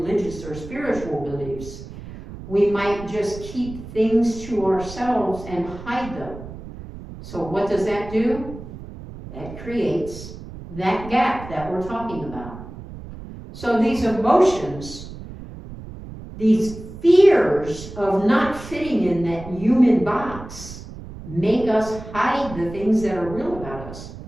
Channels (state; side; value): noise; right; rumble, 13 dB below the sound